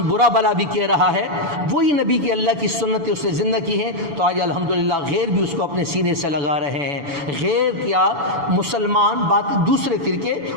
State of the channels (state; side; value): late; left; 7.0 ms